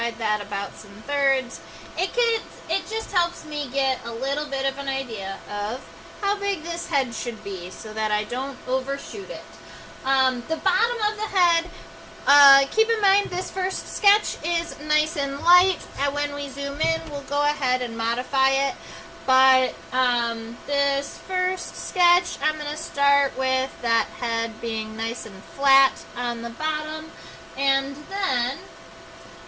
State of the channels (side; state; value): both; identical; correlation 1.00